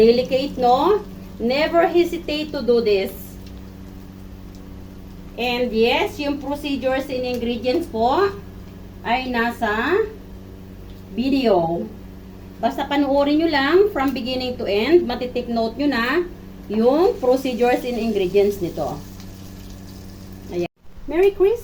no? Never hesitate to do this. And yes, yung procedures and ingredients po ay nasa video. Basta panuorin nyo lang from beginning to end. Matitake note nyo na yung procedures and ingredients nito. Ayan. Merry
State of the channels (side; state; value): both; identical; correlation 1.00